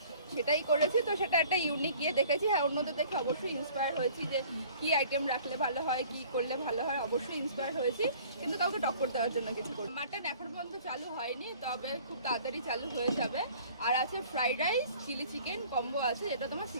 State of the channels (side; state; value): both; inverted; correlation -0.51